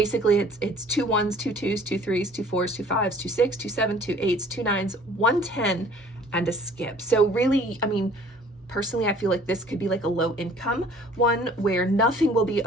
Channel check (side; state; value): both; normal; correlation 0.52